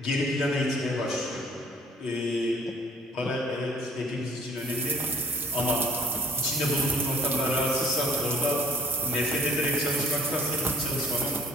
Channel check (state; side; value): normal; both; correlation 0.54